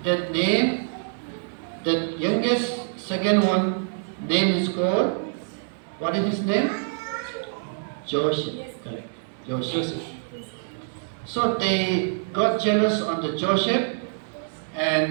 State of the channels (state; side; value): silent; left; 61 dB below the other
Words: that name, the youngest second one name is called, what is his name? Joseph. Correct. Joseph. So they got jealous on the Joseph, and